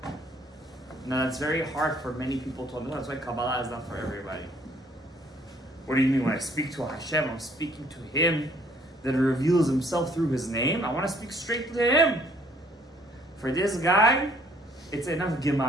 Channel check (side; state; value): both; normal; correlation 0.62